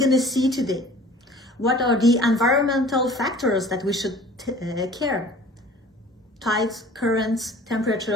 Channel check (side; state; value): both; normal; correlation 0.47